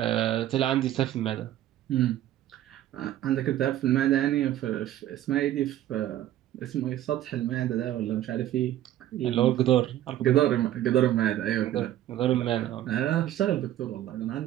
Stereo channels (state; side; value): quieter; left; 12.9 dB